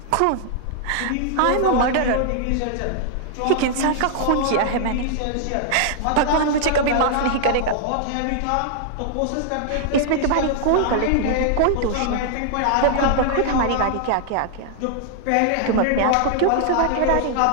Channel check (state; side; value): different; both; correlation 0.00